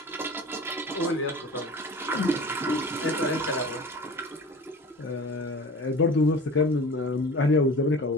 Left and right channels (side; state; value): both; normal; correlation 0.39